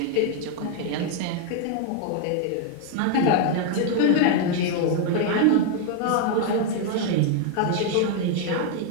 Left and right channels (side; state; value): both; different; correlation 0.00